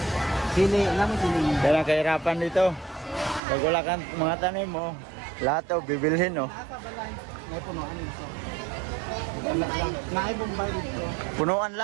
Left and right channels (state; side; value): drops out; left; at 3.4 s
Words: Sili, naman siling. Kaya kahirapan dito. Pag wala kang mga tanim mo, lahat o bibilhin, no? May punuan dito. Naay Bombay dito. Punuan